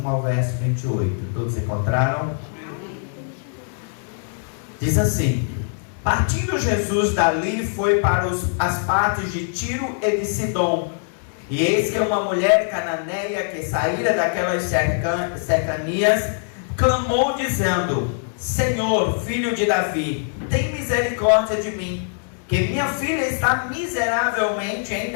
ao verso 28. Todos encontraram? Diz assim: partindo Jesus dali, foi para as partes de Tiro e de Sidom. E eis que uma mulher cananeia que saíra daquelas cercanias clamou dizendo: Senhor, filho de Davi, tem misericórdia de mim, que minha filha está miseravelmente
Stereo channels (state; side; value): silent; right; 64 dB below the other